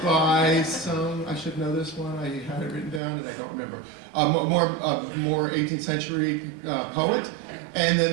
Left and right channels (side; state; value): left; drops out; at 3.0 s